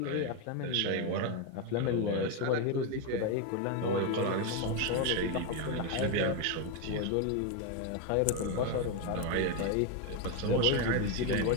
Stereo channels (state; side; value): different; both; correlation 0.02